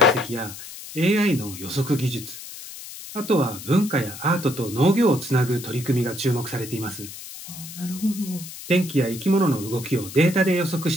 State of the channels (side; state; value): left; noise; hiss, 13 dB below the sound